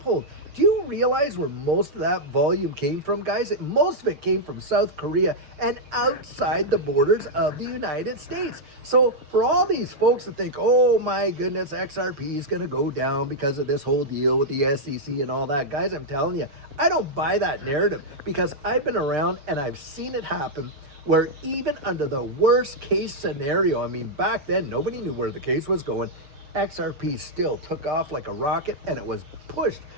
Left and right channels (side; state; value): left; late; 6.7 ms